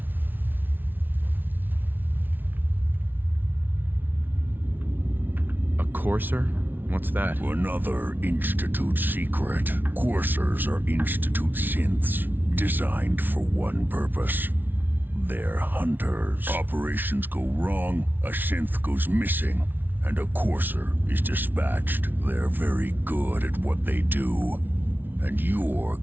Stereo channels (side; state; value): left; late; 0.091 ms